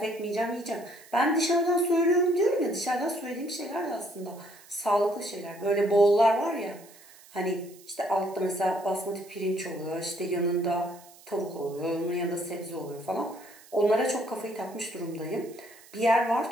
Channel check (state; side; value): noise; right; hiss, 23 dB below the sound